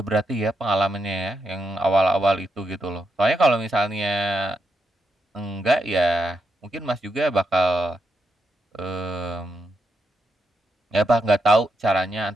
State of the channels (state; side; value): normal; both; correlation 0.82